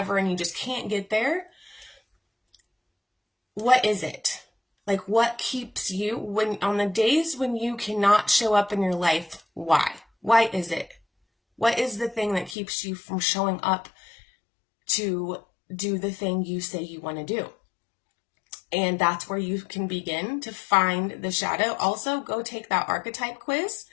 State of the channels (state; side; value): drops out; right; at 12.6 s